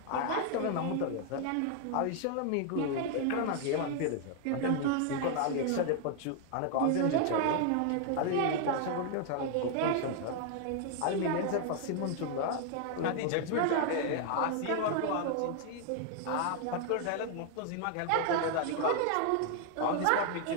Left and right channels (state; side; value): different; both; correlation 0.00